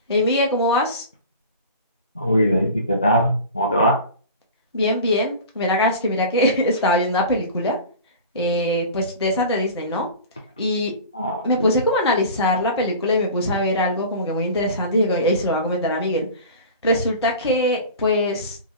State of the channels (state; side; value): inverted; both; correlation -0.36